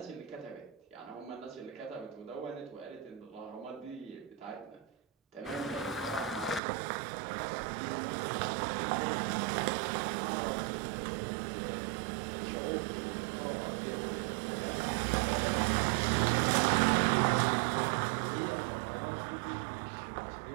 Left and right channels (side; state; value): left; drops out; at 6.6 s